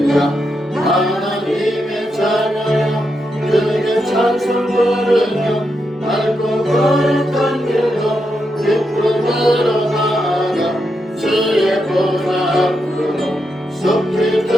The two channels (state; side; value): normal; both; correlation 0.84